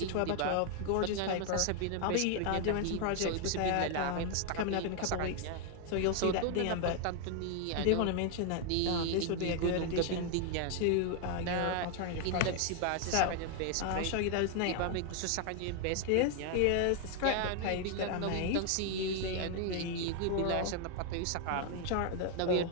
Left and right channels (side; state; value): both; different; correlation 0.00